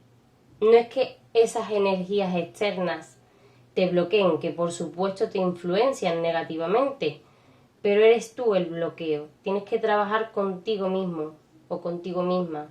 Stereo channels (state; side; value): identical; both; correlation 1.00